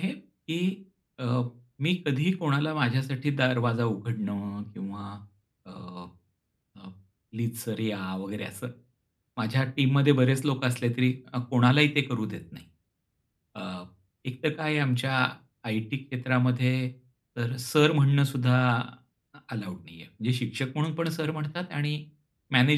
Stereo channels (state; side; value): identical; both; correlation 1.00